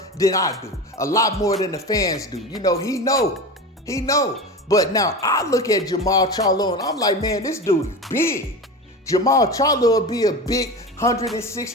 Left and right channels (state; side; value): normal; both; correlation 0.27